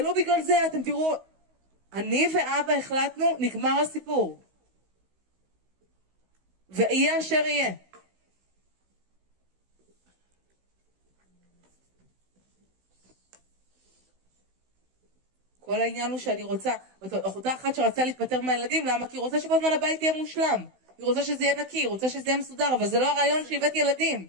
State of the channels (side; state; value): left; late; 16 ms